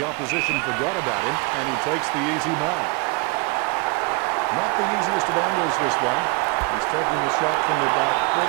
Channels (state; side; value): quieter; left; 28.1 dB